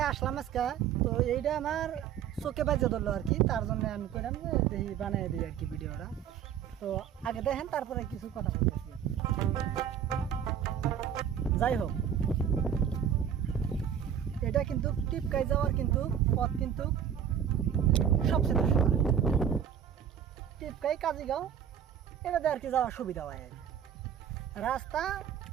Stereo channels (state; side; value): quieter; left; 9.0 dB